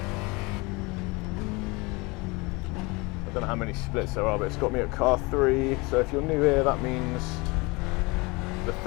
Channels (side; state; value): right; quieter; 25.6 dB